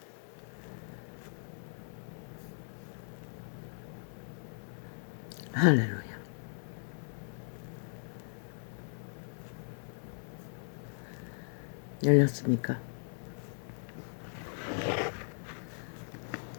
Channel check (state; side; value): silent; right; 53 dB below the other